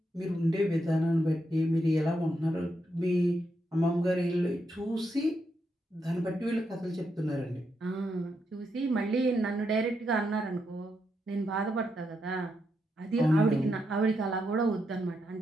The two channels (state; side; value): normal; both; correlation 0.82